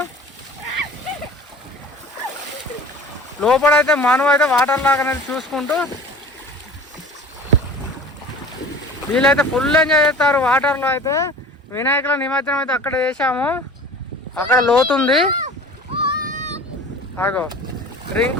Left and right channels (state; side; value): normal; both; correlation 0.41